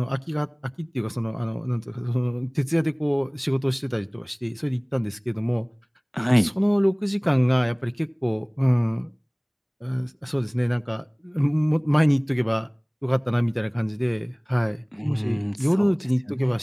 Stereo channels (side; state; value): both; identical; correlation 1.00